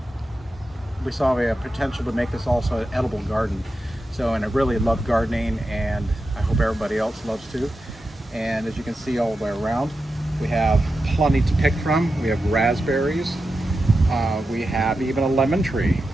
we saw a potential to make this also an edible garden. So, and I really love gardening, and I hope everybody else loves too. And as you can see all the way around, we have plenty to pick from. We have raspberries. We have even a lemon tree.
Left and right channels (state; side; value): normal; both; correlation 0.90